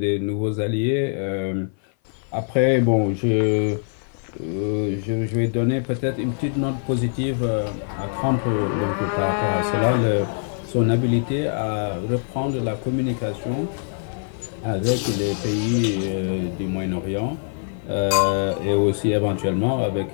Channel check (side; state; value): right; silent; 57 dB below the other